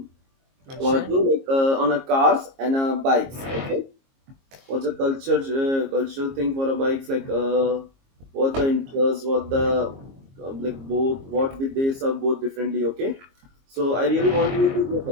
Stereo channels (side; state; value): left; late; 22 ms